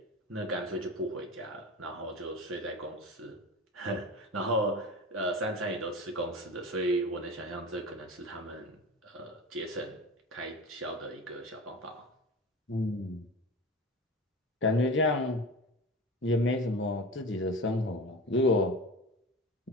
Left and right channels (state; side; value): normal; both; correlation 0.31